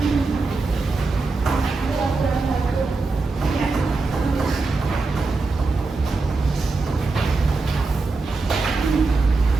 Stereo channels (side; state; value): left; quieter; 3.8 dB